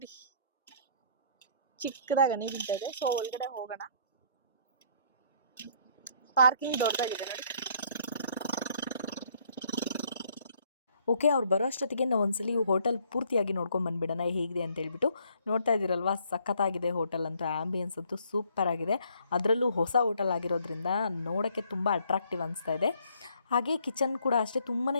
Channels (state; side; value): inverted; both; correlation -0.64